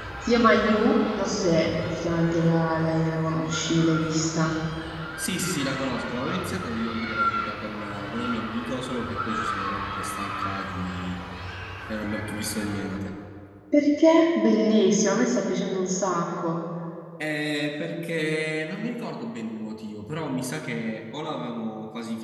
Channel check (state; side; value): identical; both; correlation 1.00